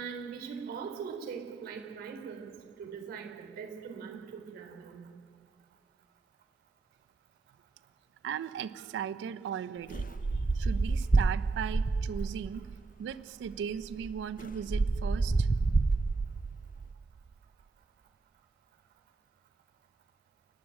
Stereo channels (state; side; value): quieter; left; 3.8 dB